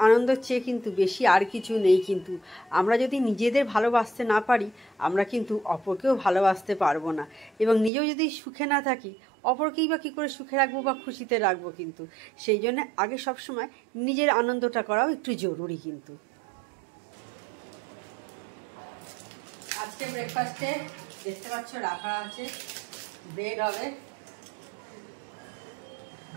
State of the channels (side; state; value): left; drops out; at 7.9 s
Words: আনন্দের চেয়ে কিন্তু বেশি আর কিছু নেই। কিন্তু আমরা যদি নিজেদের ভালোবাসতে না পারি, আমরা কিন্তু অপরকেও ভালোবাসতে পারবো না। এবং নিজেও যদি সুখে না থাকি, অপরকেই বা কী করে সুখে রাখবো বা খুশিতে রাখবো। কিন্তু সেই জন্য আগে সবসময় নিজের আনন্দটা করাও একটু জরুরি। কিন্তু আজকে ব্রেকফাস্টে দেখতে পাচ্ছ রাখা আছে, ব্রেড হবে।